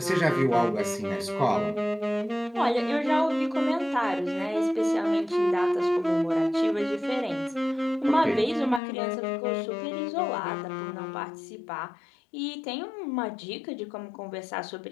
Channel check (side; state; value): right; drops out; at 8.8 s